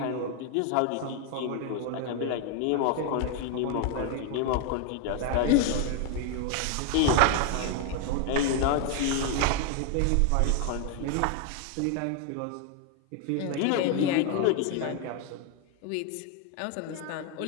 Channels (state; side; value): different; both; correlation 0.01